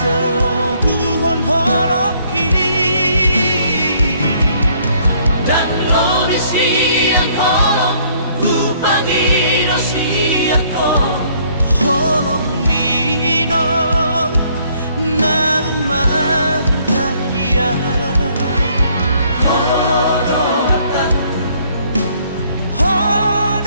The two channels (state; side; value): inverted; both; correlation -0.64